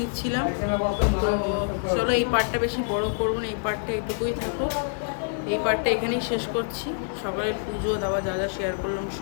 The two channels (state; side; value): silent; right; 61 dB below the other